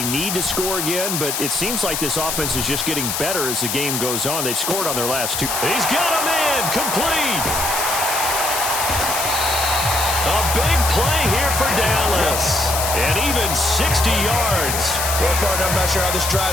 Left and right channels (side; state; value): left; noise; hiss, 2 dB below the sound